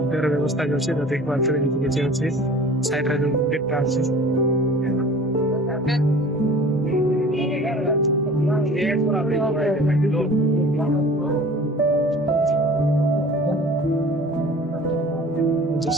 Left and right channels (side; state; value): both; normal; correlation 0.44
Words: तेरे व्यवस्था जो छे तो देख पारते एठी के छे अछि साइड रे जो डेटा अछि